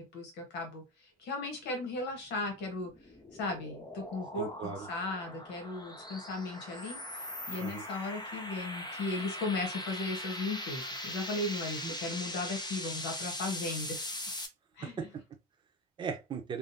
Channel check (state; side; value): normal; both; correlation 0.19